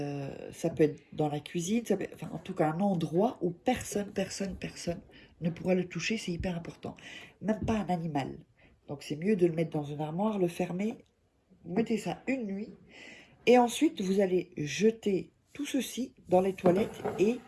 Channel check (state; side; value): identical; both; correlation 1.00